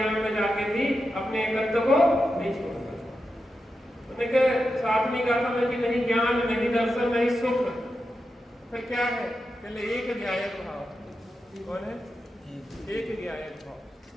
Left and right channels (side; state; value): both; normal; correlation 0.89